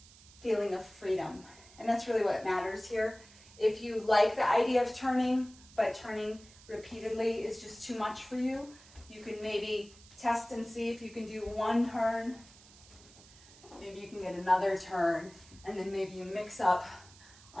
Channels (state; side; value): noise; right; hiss, 22 dB below the sound